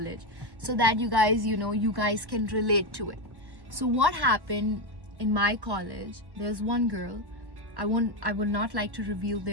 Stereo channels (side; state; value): left; late; 1.1 ms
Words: so that you guys, you guys can relate to it. So what happened in my college, there's one girl, I would not like to reveal